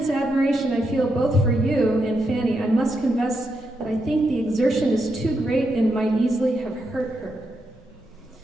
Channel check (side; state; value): both; normal; correlation 0.83